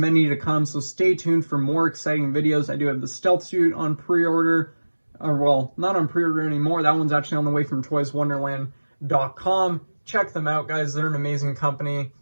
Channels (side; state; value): both; inverted; correlation -1.00